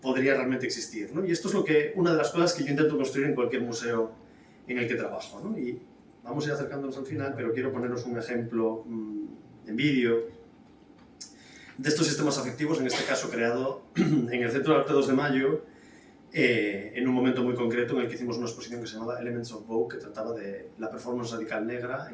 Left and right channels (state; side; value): identical; both; correlation 1.00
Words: podría realmente existir, ¿no? Y esto es una de las cosas que yo intento construir en cualquier museo en el que trabajo, ¿no? Y vamos a ir acercándonos al final, pero quiero poneros un ejemplo en vídeo de estos sistemas afectivos, en este caso creado en el Centro de Arte 2 de Mayo, en un momento muy concreto en el que hicimos una exposición que se llamaba Elements of Vogue, que trataba de la performance radical negra